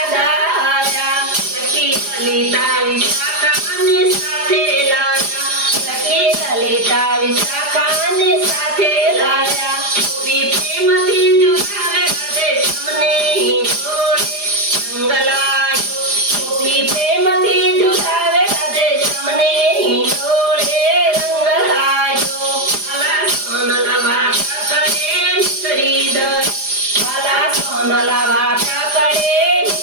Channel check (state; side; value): late; left; 4.9 ms